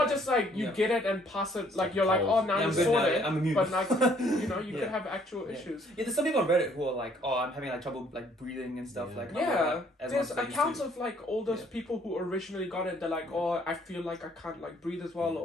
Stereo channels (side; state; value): both; normal; correlation 0.63